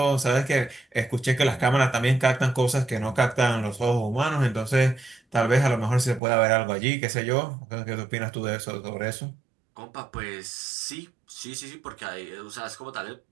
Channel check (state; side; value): drops out; left; at 6.2 s